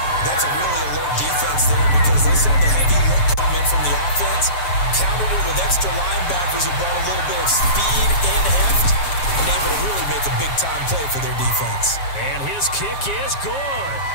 That's a really alert defense there because they saw the heavy look come in from the offense, countered it with extra linebackers who brought a little bit of speed and heft, and able to really make a big-time play for their defense. And his kick is good.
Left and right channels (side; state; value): right; late; 7.3 ms